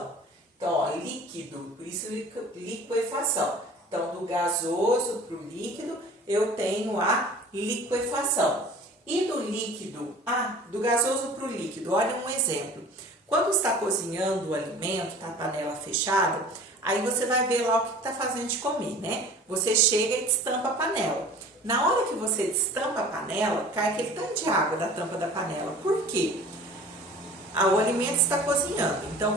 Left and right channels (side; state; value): both; normal; correlation 0.44